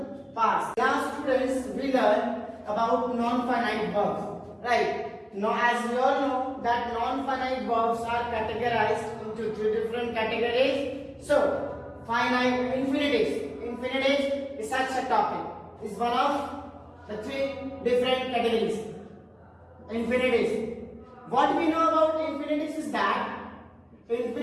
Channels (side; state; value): both; identical; correlation 1.00